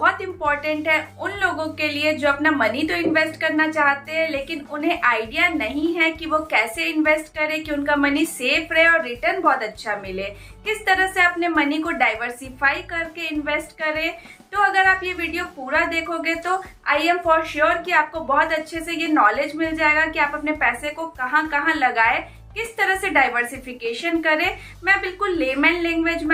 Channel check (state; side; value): identical; both; correlation 1.00